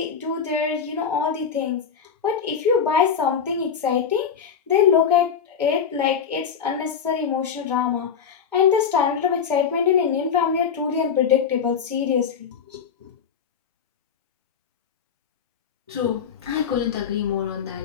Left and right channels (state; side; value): quieter; right; 7.0 dB